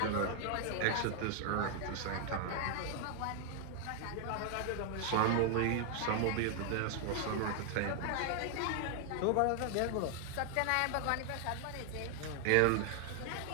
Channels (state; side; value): different; both; correlation 0.00